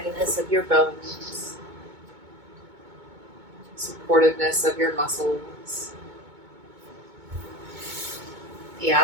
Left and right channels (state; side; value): late; left; 2.2 ms